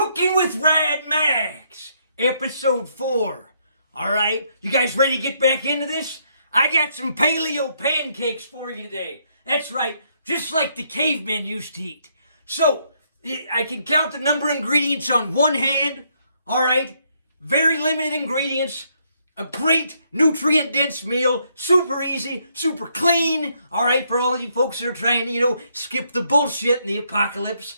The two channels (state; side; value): inverted; both; correlation -0.73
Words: with Rad Max, episode 4. All right, you guys ready to get back into this? I got some paleo pancakes for you today. That's right, just like the cavemen used to eat. So, I can count the number of ingredients on one hand. All right, very limited ingredients. A great nutrient-dense meal, super easy, super clean, all right, for all you folks that are trying to, skip the bullshit in the apocalypse.